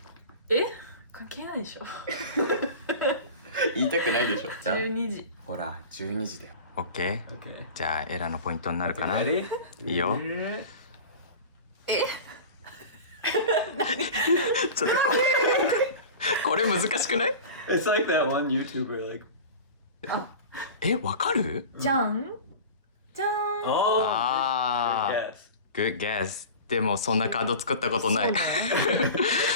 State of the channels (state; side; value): inverted; both; correlation -0.34